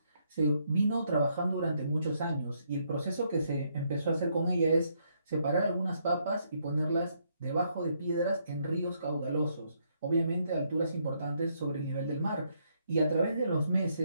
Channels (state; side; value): inverted; both; correlation -0.74